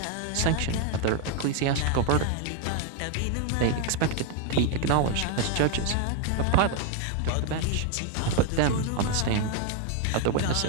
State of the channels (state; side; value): different; both; correlation 0.01